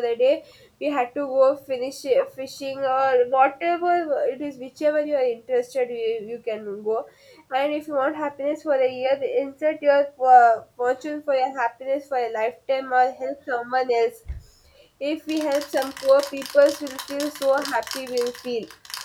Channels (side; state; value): both; identical; correlation 1.00